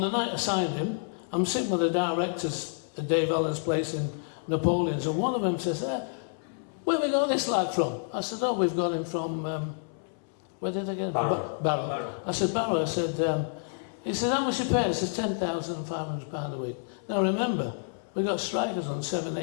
the night I signed him, I'm sitting with the directors at Dave Allen's place in Napoleon's, and one of them says, where have we got this lad from? I said, oh, we've got him from, where did I get him? Barrow. I said, Barrow. I said, he said, how much you pay? I said, £10,500 a week. Now remember, we got strikers on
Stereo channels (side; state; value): right; silent; 59 dB below the other